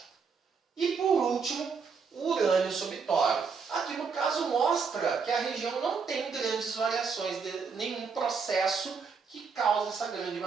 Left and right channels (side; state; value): left; quieter; 5.5 dB